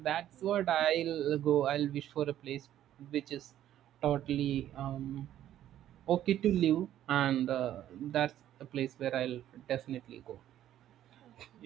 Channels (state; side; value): quieter; left; 12.0 dB